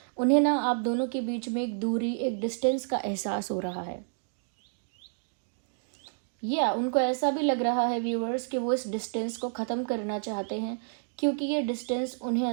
उन्हें ना आप दोनों के बीच में एक दूरी, एक डिस्टेंस का एहसास हो रहा है। उनको ऐसा भी लग रहा है व्यूअर्स कि वो इस डिस्टेंस को ख़त्म करना चाहते हैं, क्योंकि ये डिस्टेंस उन्हें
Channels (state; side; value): silent; left; digital silence